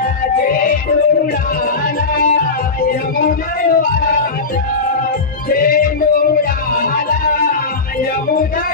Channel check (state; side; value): quieter; right; 4.0 dB